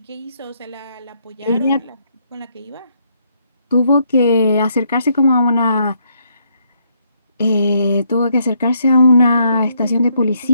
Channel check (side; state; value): both; inverted; correlation -0.73